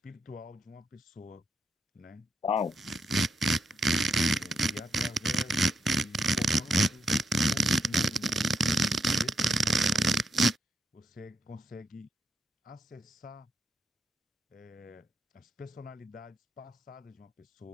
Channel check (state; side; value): normal; both; correlation 0.79